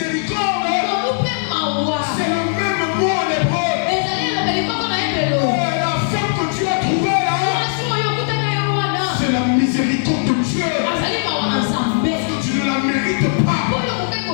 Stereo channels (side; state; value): right; silent; digital silence